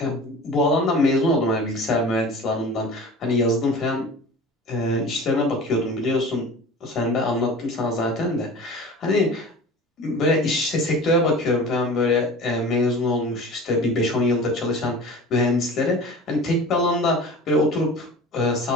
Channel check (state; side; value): normal; both; correlation 0.38